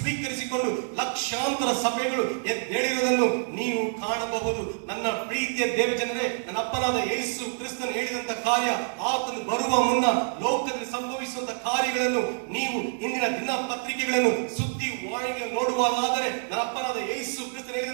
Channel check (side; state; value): left; silent; digital silence